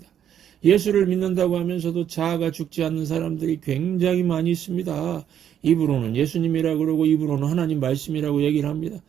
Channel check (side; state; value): left; quieter; 9.6 dB